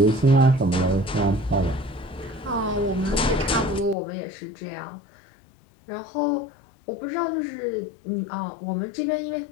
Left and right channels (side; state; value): right; drops out; at 4.0 s